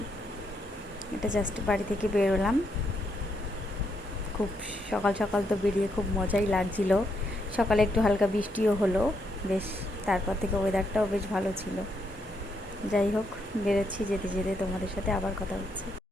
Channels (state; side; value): normal; both; correlation 0.78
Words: এটা জাস্ট বাড়ি থেকে বেরোলাম। খুব সকাল সকাল তো বেরিয়ে খুব মজাই লাগছিল। সকালে একটু হালকা বৃষ্টিও হলো বেশ, তারপর থেকে ওয়েদারটাও বেশ ভালো ছিল। যাই হোক, বেরোচ্ছি, যেতে যেতে তোমাদের সাথে আবার কথা হচ্ছে।